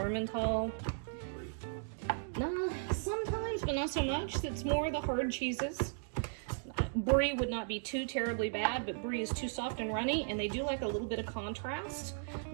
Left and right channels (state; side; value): silent; left; digital silence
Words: No, sometimes, but not so much. It's more the hard cheeses. Brie would not be too terribly bad, but Brie is too soft and runny, and they do like a little bit of contrast